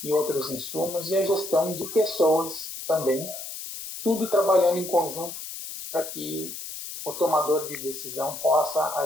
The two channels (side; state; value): left; noise; hiss, 9 dB below the sound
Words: e outros insumos, e a gestão de pessoas também, tudo trabalhando em conjunto para que o tomador de decisão possa